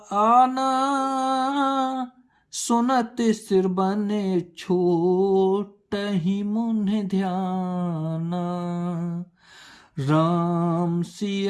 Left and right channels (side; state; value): both; identical; correlation 1.00